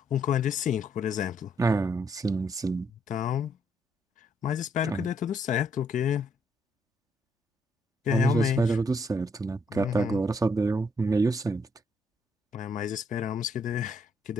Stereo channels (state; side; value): normal; both; correlation 0.72